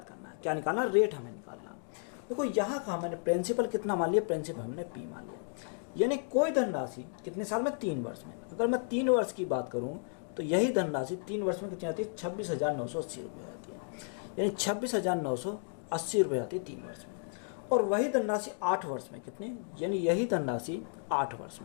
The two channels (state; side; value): silent; right; 56 dB below the other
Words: करना है। क्या निकालना, रेट हमें निकालना। देखो यहाँ का मैंने प्रिंसिपल कितना मान लिया, प्रिंसिपल हमने P मान लिया, यानी कोई धनराशि कितने साल में, 3 वर्ष में। अगर मैं 3 वर्ष की बात करूँ तो यही धनराशि 3 वर्ष में कितनी आती है, 26,980 रुपये आती है, यानी 26,980 रुपये आती है 3 वर्ष में। और वही धनराशि 8 वर्ष में कितने, यानी यही धनराशि 8 वर्ष